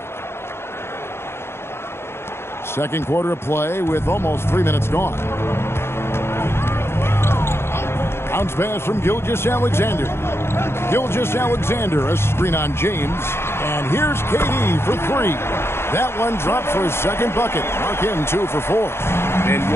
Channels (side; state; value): right; late; 0.12 ms